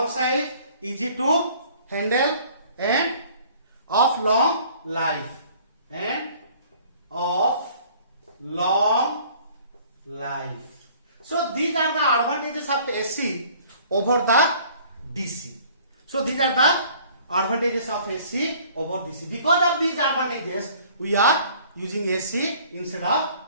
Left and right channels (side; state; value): both; inverted; correlation -0.54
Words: size, easy to handle, and of long life. So these are the advantages of AC over the DC. So these are the advantages of AC over DC. Because of these advantages, we are using AC instead of